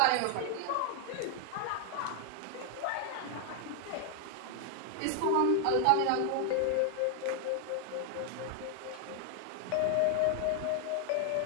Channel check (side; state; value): both; different; correlation 0.00